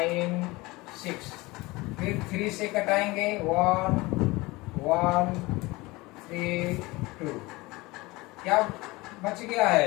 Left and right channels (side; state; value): right; quieter; 22.0 dB